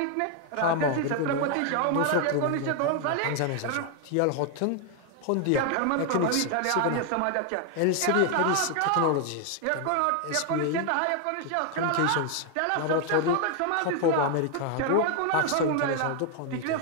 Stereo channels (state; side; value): different; both; correlation 0.00